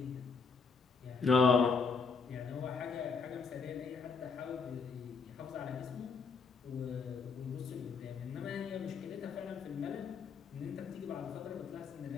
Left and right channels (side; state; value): right; quieter; 5.0 dB